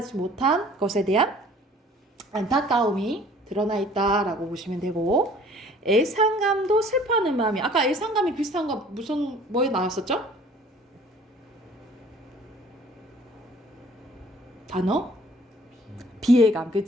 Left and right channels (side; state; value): both; normal; correlation 0.53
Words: 못한 것에 대한 안타까움이 드러나 있다라고 보시면 되고, 애상감도 슬퍼하는 마음이, 아까 애상감이 비슷한 거 뭐에 나왔었죠? 단어? 비애감,